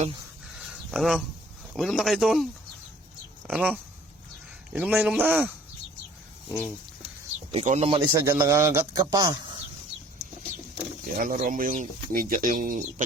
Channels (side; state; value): both; normal; correlation 0.54